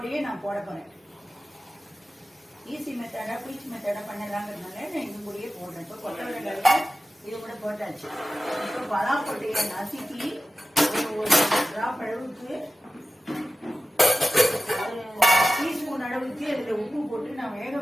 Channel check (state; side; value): normal; both; correlation 0.95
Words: நான் போட போறேன். ஈஸி மெத்தடா குயிக் மெத்தடா பண்ணலாங்கிறதுனால நான் இது கூடயே போடுறேன். இப்போ கொத்தவரங்காய் இது கூட போட்டாச்சு. இப்போ பலாப்பட்டையை நசுக்கி ஒரு டிராப் அளவுக்கு ஒரு டீஸ்பூன் அளவுக்கு அதில் உப்பு போட்டு நான் வேக